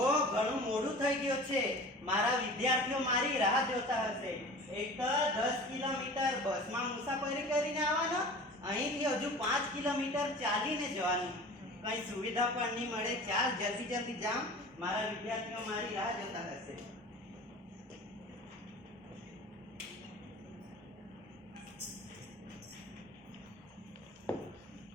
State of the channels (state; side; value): normal; both; correlation 0.40